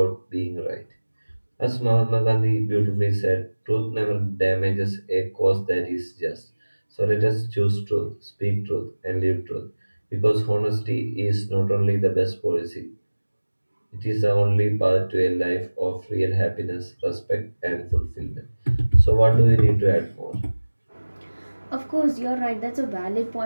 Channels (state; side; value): inverted; both; correlation -1.00